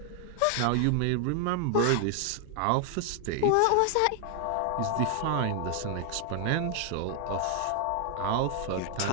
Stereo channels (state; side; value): different; both; correlation 0.00